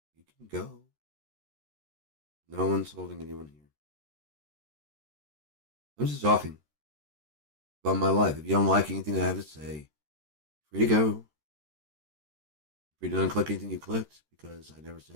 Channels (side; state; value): left; late; 13 ms